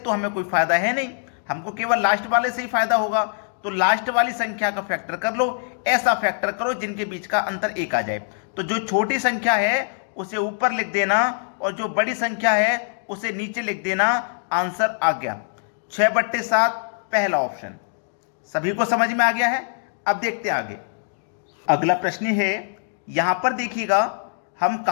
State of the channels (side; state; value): right; silent; digital silence